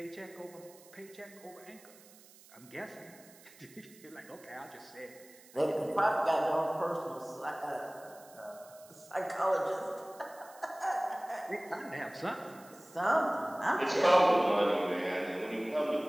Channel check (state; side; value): noise; right; hiss, 23 dB below the sound